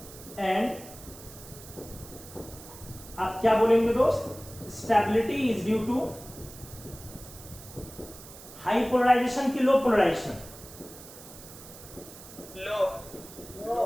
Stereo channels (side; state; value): right; noise; hiss, 17 dB below the sound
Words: एंड आप क्या बोलेंगे दोस्त? Stability is due to high polarization की low polarization? Low